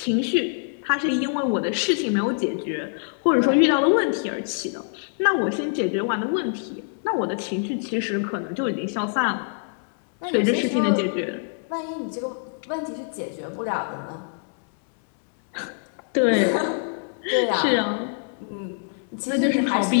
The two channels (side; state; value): right; silent; digital silence